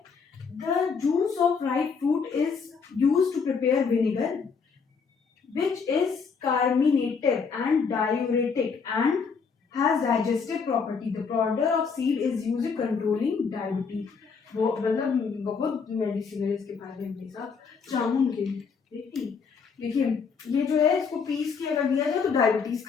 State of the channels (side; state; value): right; quieter; 5.6 dB